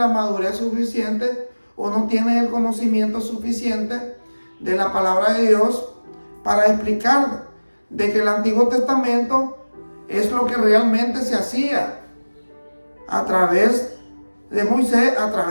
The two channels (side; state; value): both; inverted; correlation -1.00